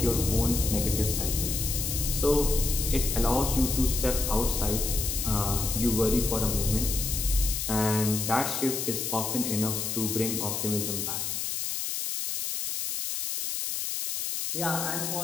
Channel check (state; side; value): noise; left; hiss, 2 dB below the sound